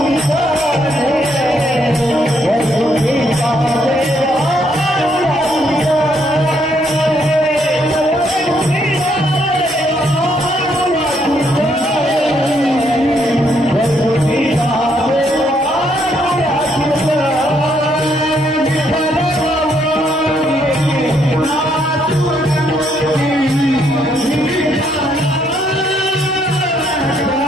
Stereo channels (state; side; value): normal; both; correlation 0.72